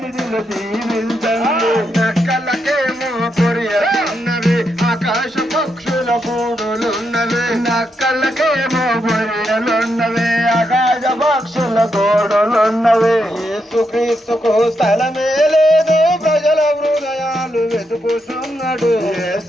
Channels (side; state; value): both; normal; correlation 0.82